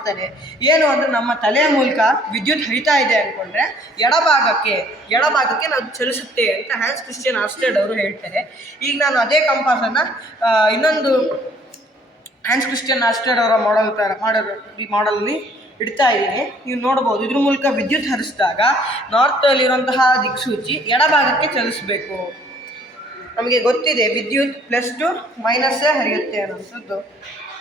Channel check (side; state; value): both; normal; correlation 0.59